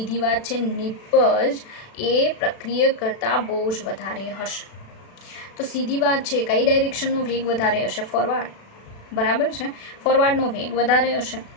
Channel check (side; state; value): right; late; 36 ms